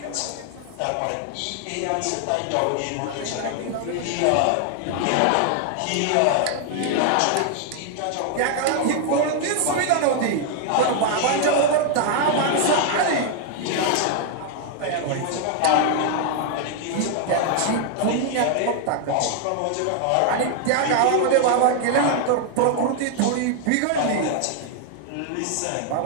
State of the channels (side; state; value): both; different; correlation 0.00